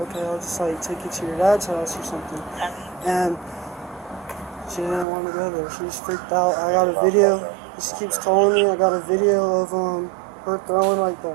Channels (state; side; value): drops out; left; at 5.1 s